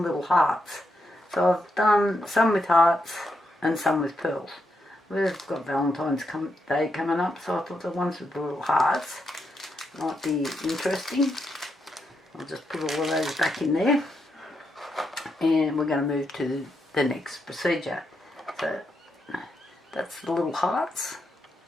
little hearts, so I've done some with hearts and some with pearls. We've got Valentine's Day coming up, so I thought the ones with the little hearts might be interesting. I'll just put all of those back in there, and we're going to move to the next procedure. So that's the little hearts,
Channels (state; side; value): normal; both; correlation 0.82